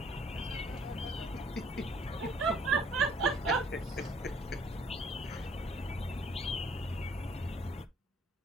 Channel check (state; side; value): normal; both; correlation 0.60